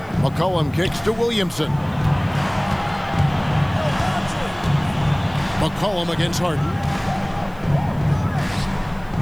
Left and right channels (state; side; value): noise; left; hiss, 29 dB below the sound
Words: McCollum kicks to Williamson. McCollum against Harden.